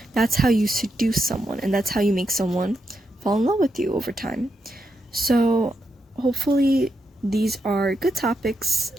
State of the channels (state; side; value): normal; both; correlation 0.83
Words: That's how you seduce someone, and that's how you make someone fall in love with you over time. So hopefully these are good topics